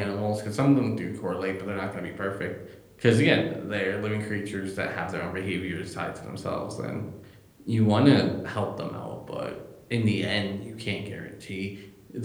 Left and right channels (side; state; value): both; identical; correlation 1.00